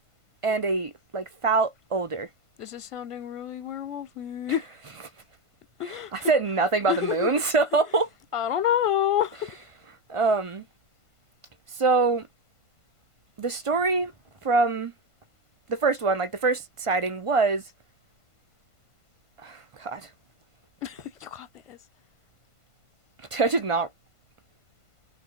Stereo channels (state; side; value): late; left; 1.5 ms